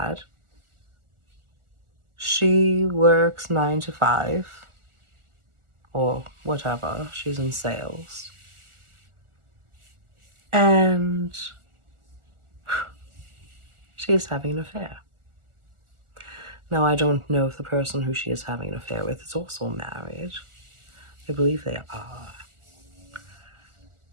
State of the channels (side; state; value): left; late; 1.4 ms